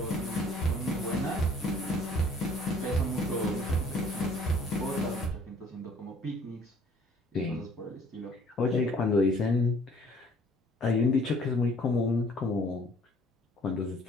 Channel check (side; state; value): both; normal; correlation 0.57